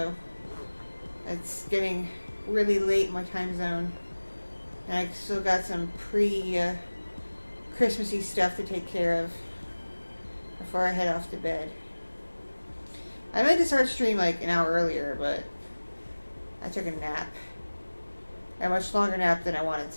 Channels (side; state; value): both; inverted; correlation -1.00